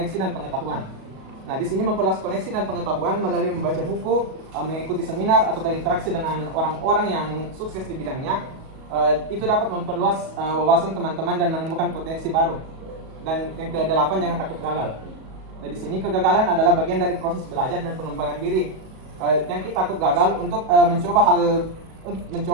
dan pengetahuan. Nah, di sini memperluas koneksi dan pengetahuan melalui membaca buku, mengikuti seminar atau berinteraksi dengan orang-orang yang sukses di bidangnya. Itu dapat memperluas wawasan teman-teman dan menemukan potensi baru. Dan yang ke-8, jangan takut gagal. Nah, di sini kegagalan adalah bagian dari proses belajar dan pengembangan diri. Jangan kita takut gagal untuk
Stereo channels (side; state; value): left; late; 37 ms